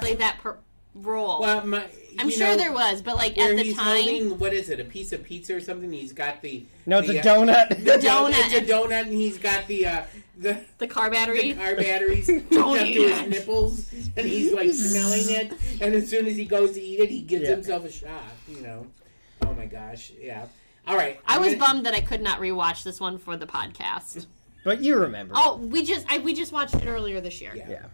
Play that role. Well, I'm sure there was, but like at the time... Holding, what is it, a piece of pizza or something? He's got the... No, it's a donut. The donut. It's a donut, and he's got the car battery. The car batteries hooked up to his nipples, and he's like smelling it, and as soon as he goes to eat it, he gives himself a shot, Oh my gosh, yeah. All right. I was bummed that I could not rewatch this one for the podcast. But you remember. Oh, we just watched it earlier this year. Yeah.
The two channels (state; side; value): inverted; both; correlation -1.00